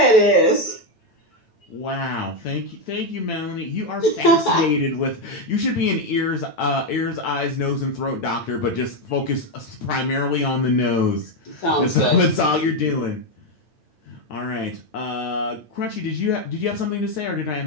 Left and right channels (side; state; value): right; late; 8.9 ms